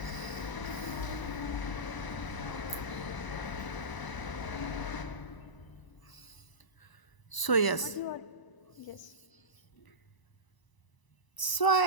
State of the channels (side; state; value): right; late; 1.0 ms